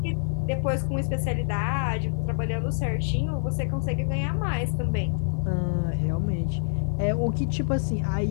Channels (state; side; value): silent; right; digital silence